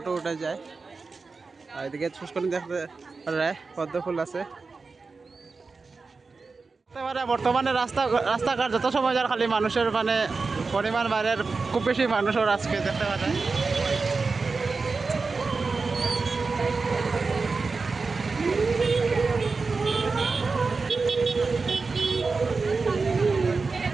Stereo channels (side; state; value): left; quieter; 4.3 dB